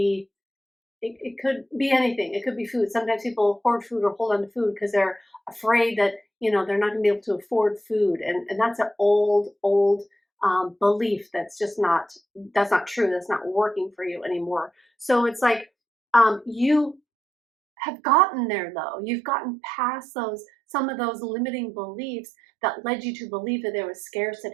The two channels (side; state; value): left; drops out; at 17.0 s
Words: it could be anything. It could be food. Sometimes people hoard food or hold on to food because they're afraid that, they're not going to be able to afford food. And that's an old belief that's not true. That's not working for you anymore. So it's like you have gotten there though. You've gotten past some of those limiting beliefs that led you to believe that there was